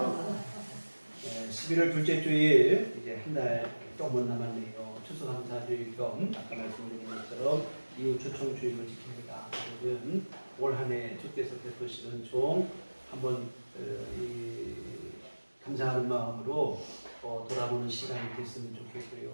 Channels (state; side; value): inverted; both; correlation -1.00